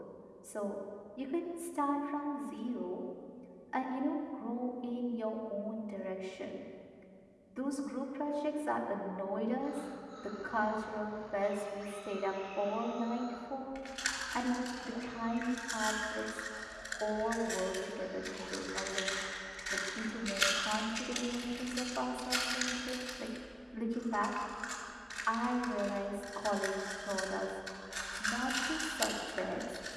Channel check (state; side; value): identical; both; correlation 1.00